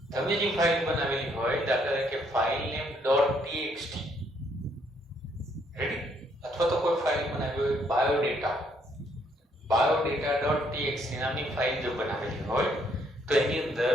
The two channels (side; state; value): both; normal; correlation 0.69